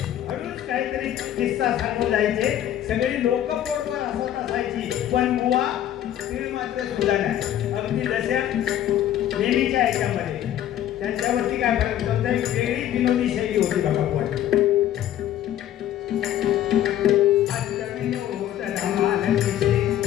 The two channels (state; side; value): quieter; right; 11.7 dB